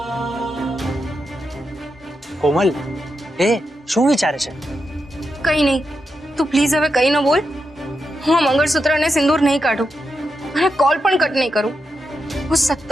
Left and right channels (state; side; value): normal; both; correlation 0.86